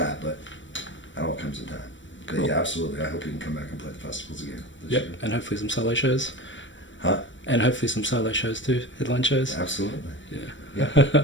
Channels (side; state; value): right; late; 0.55 ms